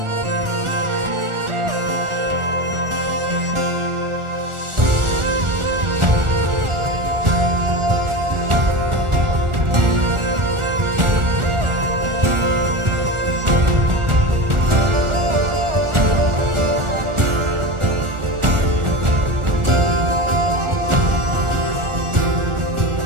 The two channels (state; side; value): late; left; 1.4 ms